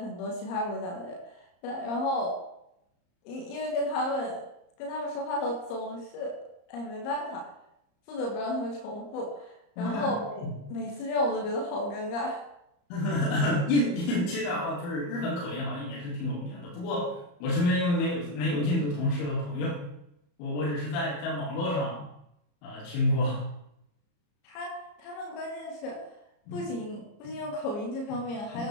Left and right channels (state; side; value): late; right; 34 ms